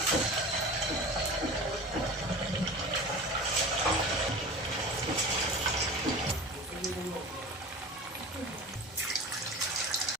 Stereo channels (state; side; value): normal; both; correlation 0.35